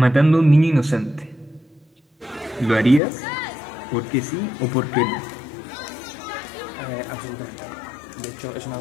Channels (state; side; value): drops out; right; at 3.0 s